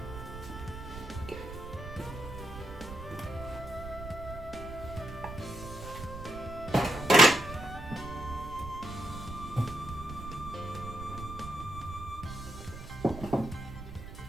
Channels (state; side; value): noise; right; rumble, 11 dB below the sound